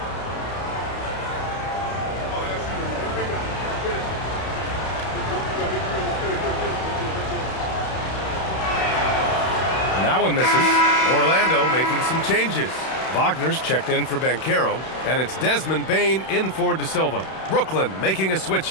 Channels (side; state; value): right; late; 31 ms